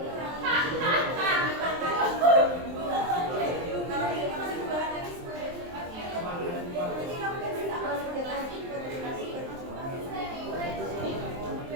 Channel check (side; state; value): left; late; 23 ms